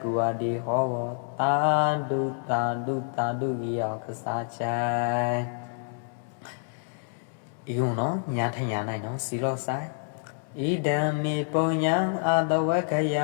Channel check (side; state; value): right; silent; digital silence